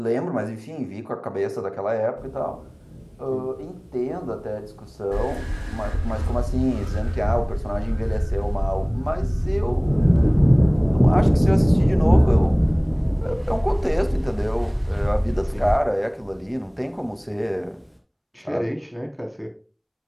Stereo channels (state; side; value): identical; both; correlation 1.00